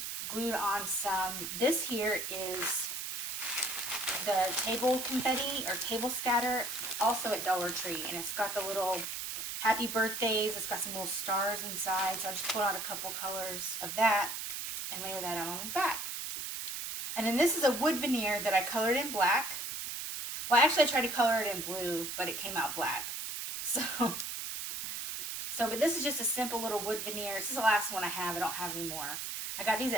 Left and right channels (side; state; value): right; noise; hiss, 5 dB below the sound